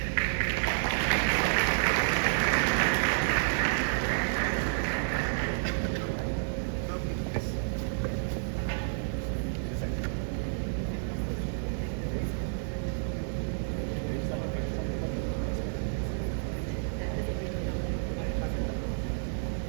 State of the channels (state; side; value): silent; left; digital silence